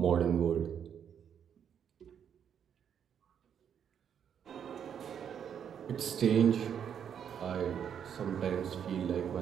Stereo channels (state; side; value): quieter; left; 8.4 dB